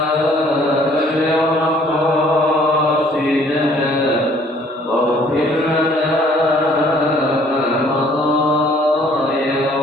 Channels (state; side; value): normal; both; correlation 0.58